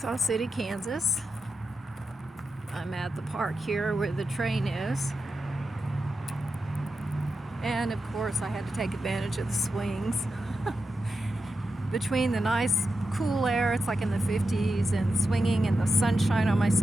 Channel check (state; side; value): normal; both; correlation 0.89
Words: City, Kansas. I'm at the park here where the train is. And of course I had to take advantage of the swings. Between the nice cool air, it's like in the 50s, and swinging and the sunshine on my